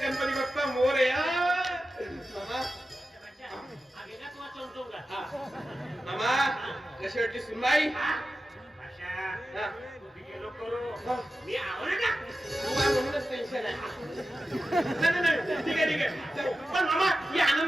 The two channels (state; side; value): normal; both; correlation 0.92